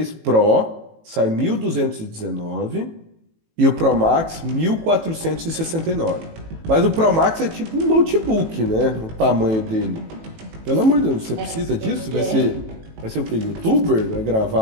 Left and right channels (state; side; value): late; left; 18 ms